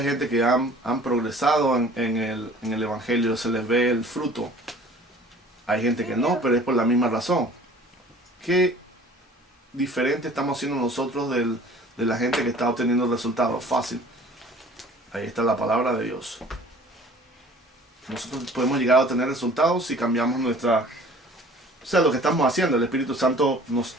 gente que han progresado en el Evangelio, se les ve el fruto. Hay gente que no, pero es por la misma razón. ¿Qué diferente estamos siendo nosotros de la gente que está obteniendo resultados? Fácil. Ahí está la palabra de Dios. Nosotros podemos llegar a obtener resultados si cambiamos lo que estamos haciendo. El Espíritu Santo nos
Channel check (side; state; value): both; normal; correlation 0.49